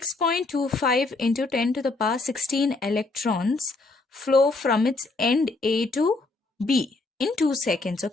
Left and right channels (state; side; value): quieter; right; 3.4 dB